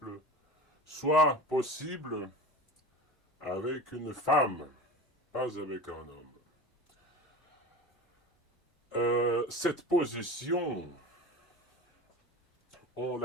soit possible avec une femme, pas avec un homme. Cette position, on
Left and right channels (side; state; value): both; normal; correlation 0.32